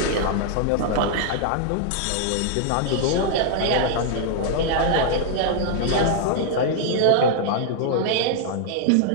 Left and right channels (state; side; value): different; both; correlation -0.01